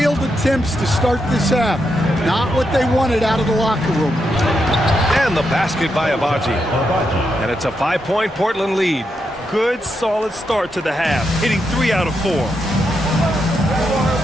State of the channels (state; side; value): normal; both; correlation 0.83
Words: attempts to start this half. Not what they wanted out of the locker room. And the basket by Abaji. And it's a 5-point Portland lead. Good, solid start to the half, hitting 3 out of 4.